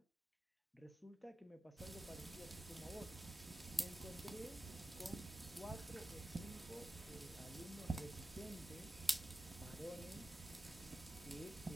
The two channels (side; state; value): both; normal; correlation 0.94